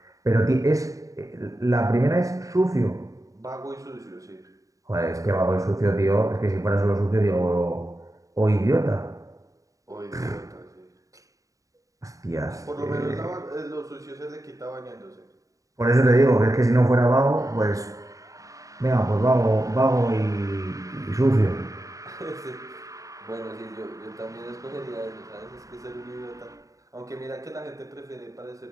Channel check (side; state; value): left; late; 0.16 ms